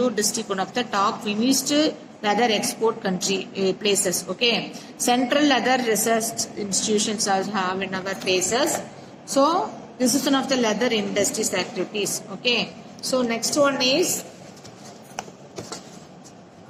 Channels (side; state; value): both; identical; correlation 1.00